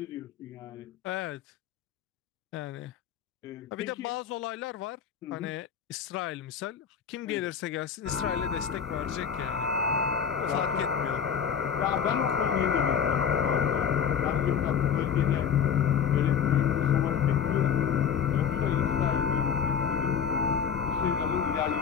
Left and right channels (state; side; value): quieter; right; 7.5 dB